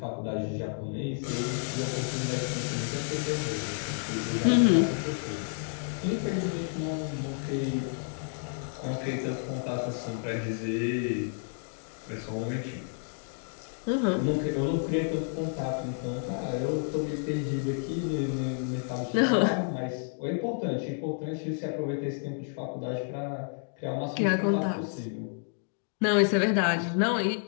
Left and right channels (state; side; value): silent; right; 58 dB below the other